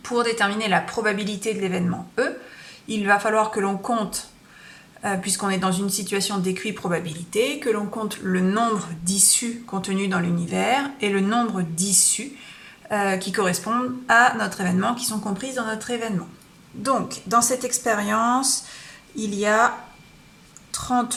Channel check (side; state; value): both; identical; correlation 1.00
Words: Pour déterminer la probabilité de l'événement E, il va falloir que l'on compte, puisqu'on est dans une situation d'équi-probabilité, que l'on compte le nombre d'issues contenues dans l'univers et le nombre d'issues qui correspondent à notre événement, qui sont comprises dans notre événement. Donc, dans cette expérience, il y a